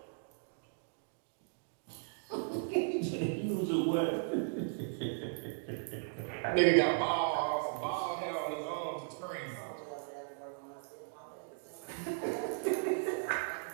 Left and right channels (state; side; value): silent; left; digital silence